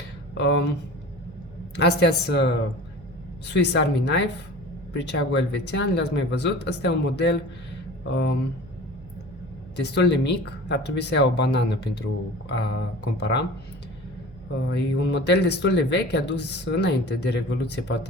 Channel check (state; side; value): noise; right; hum, 20 dB below the sound